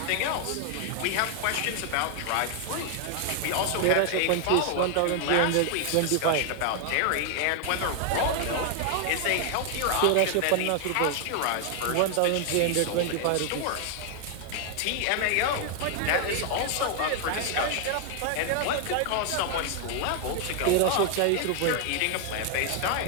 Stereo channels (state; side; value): different; both; correlation 0.00